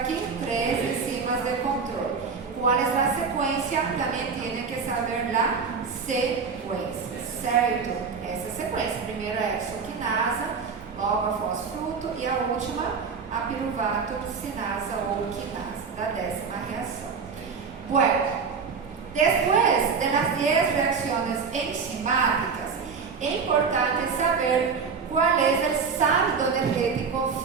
3 enzimas de control. ¿Cuál es la secuencia? También tiene que saber la secuencia, ¿cierto? Essa sequência. Primeiro a exoquinasa, logo a fosfruto e a última a piruvatocinasa ou quinasa, da 10ª reação. Bueno. Después de las 10 reacciones enzimáticas, es importante saber cuál es el saldo energético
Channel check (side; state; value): left; quieter; 5.5 dB